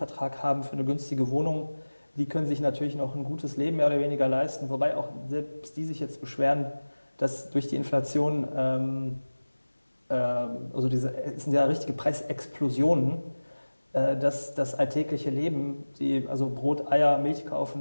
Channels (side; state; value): both; inverted; correlation -1.00